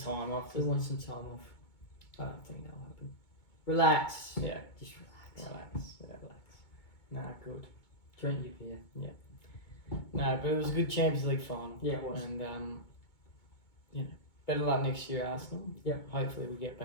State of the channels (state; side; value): late; right; 2.2 ms